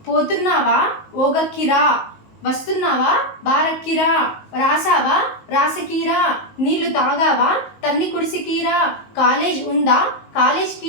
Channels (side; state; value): right; late; 19 ms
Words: పోతున్నావా, ఓగక్కిరా. వస్తున్నావా, బారక్కిరా. రాసావా, రాసకీరా. నీళ్లు తాగావా, తన్ని కుడిసికీరా. కాలేజ్ ఉందా, కాలేజ్